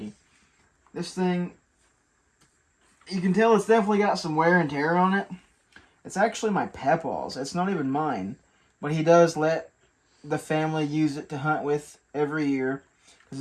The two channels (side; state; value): both; identical; correlation 1.00